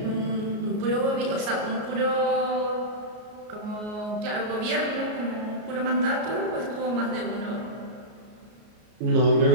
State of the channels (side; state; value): left; late; 33 ms